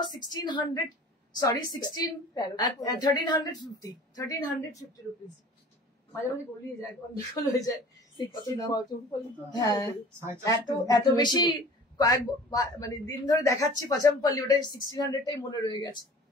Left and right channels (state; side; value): normal; both; correlation 0.45